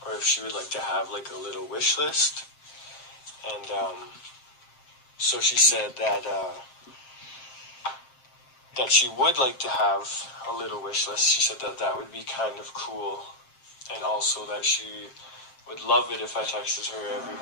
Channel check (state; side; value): late; right; 7.5 ms